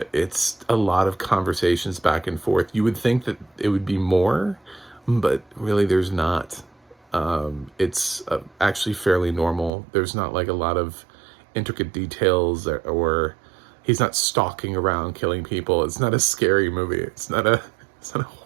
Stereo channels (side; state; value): left; drops out; at 9.7 s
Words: It's a lot of conversations back and forth. You would think that it would be more, but really there's not. It's actually fairly normal. There's not like a lot of intricate details, or he's not stalking around killing people. It's not a scary movie. It's not a